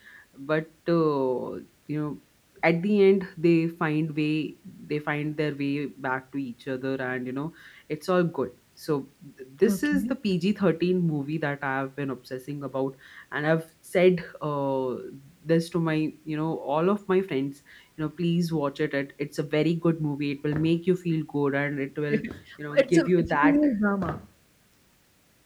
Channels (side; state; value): both; identical; correlation 1.00